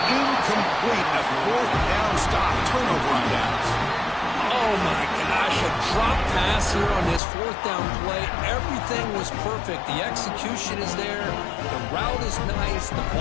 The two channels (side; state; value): right; drops out; at 7.2 s